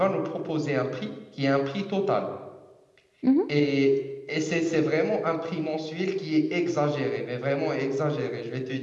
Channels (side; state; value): both; identical; correlation 1.00